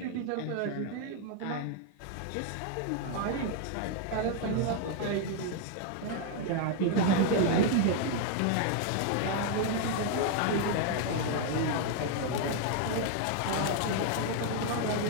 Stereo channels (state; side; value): different; both; correlation 0.00